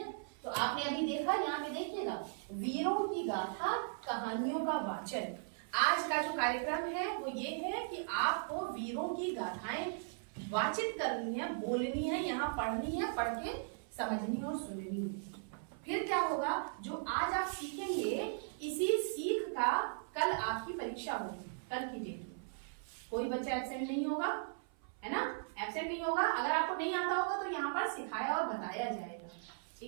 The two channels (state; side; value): silent; left; 53 dB below the other